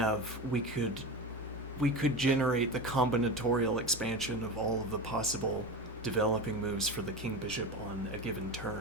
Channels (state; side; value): normal; both; correlation 0.25